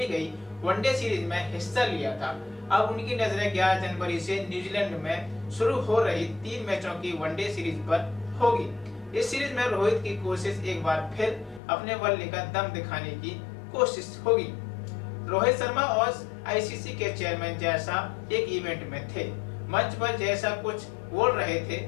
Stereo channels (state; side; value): drops out; right; at 11.6 s